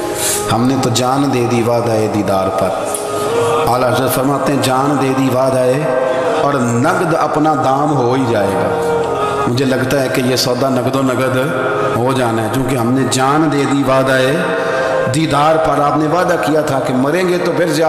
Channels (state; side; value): identical; both; correlation 1.00